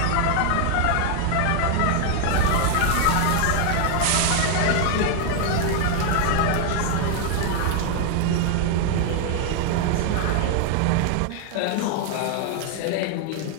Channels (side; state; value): both; different; correlation 0.00